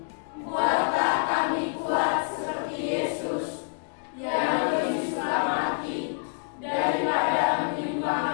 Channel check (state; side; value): silent; right; digital silence